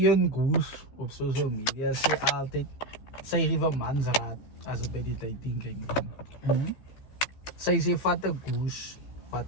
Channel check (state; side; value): late; right; 15 ms